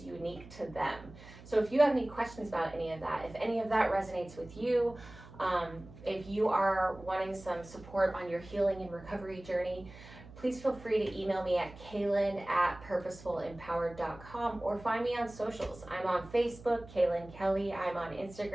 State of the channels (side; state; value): right; noise; hum, 18 dB below the sound